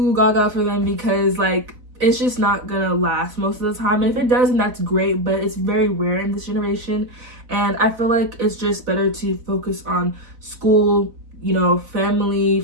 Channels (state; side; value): late; left; 4.0 ms